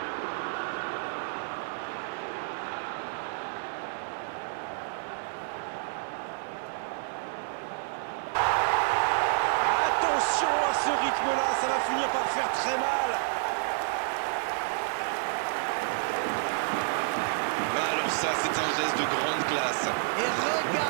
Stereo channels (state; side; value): silent; left; digital silence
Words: Attention à ce rythme-là, ça va finir par faire très mal. Alors ça, c'est un geste de grande classe. Et